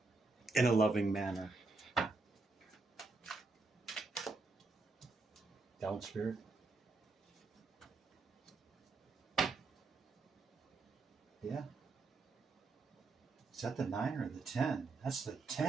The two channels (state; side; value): quieter; left; 3.7 dB